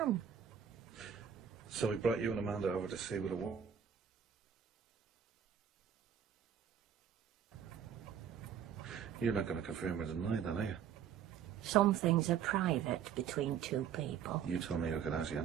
So he brought you and Amanda over to see what it was. You're not going to confirm or deny that, are you? Some things are private between two people. You told me I could ask you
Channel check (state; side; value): quieter; left; 8.3 dB